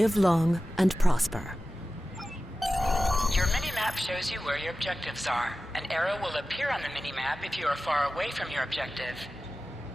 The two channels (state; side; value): normal; both; correlation 0.94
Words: long and prosper. Your mini-map shows you where your objectives are. An arrow will appear on the mini-map if you are far away from your objective.